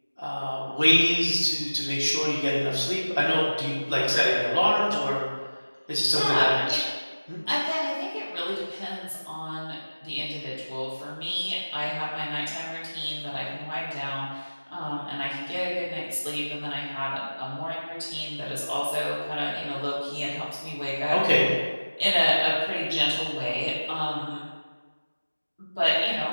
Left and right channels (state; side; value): inverted; both; correlation -1.00